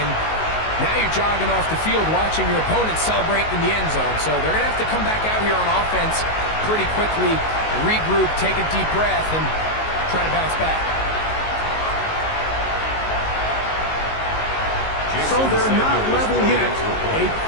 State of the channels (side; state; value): right; late; 19 ms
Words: and now you're jogging off the field watching your opponent celebrate in the end zone. So they're going to have to come back out here on offense pretty quickly, regroup, take a deep breath, and try to bounce back. So they're not level yet. A